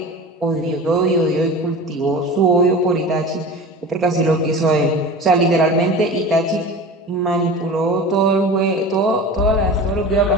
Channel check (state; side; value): normal; both; correlation 0.34